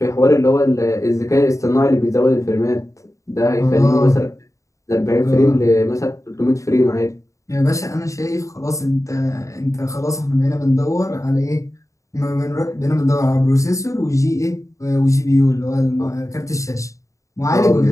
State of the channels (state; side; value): late; right; 0.15 ms